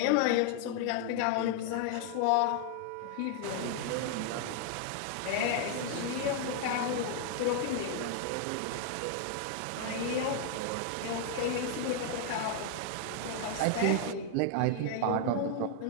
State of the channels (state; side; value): different; both; correlation 0.00